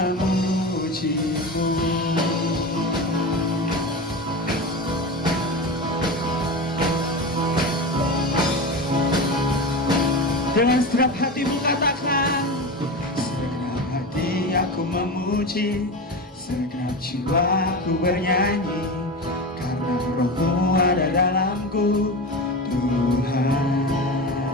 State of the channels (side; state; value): both; normal; correlation 0.25